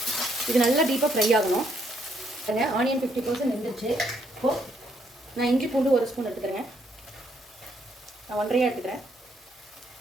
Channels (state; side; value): normal; both; correlation 0.72